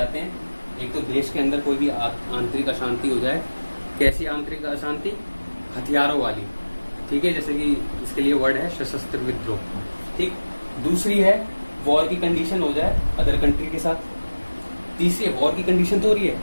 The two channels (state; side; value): inverted; both; correlation -1.00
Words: हैं। एक तो देश के अंदर कोई भी आंतरिक अशांति हो जाए। कैसी आंतरिक अशांति? हथियारों वाली, ठीक है। जैसे कि इसके लिए वर्ड है सशस्त्र विद्रोह, ठीक। दूसरी है वॉर की कंडीशन हो जाए अदर कंट्री के साथ। तीसरी है वॉर की कंडीशन तो हो रही है